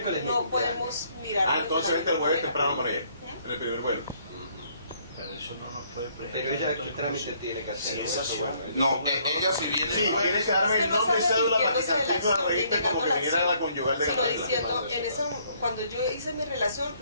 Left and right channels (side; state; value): both; inverted; correlation -0.66